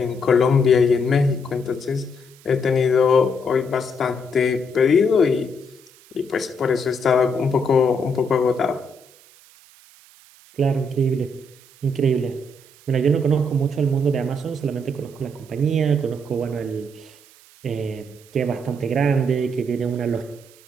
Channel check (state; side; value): noise; right; hiss, 26 dB below the sound